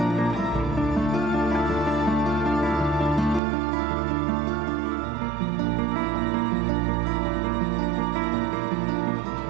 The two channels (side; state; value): left; drops out; at 3.4 s